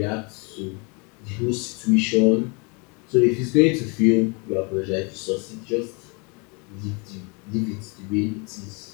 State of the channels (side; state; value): right; quieter; 32.1 dB